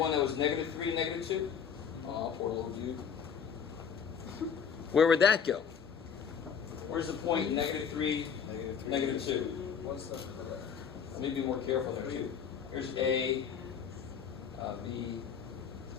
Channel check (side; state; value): right; quieter; 7.2 dB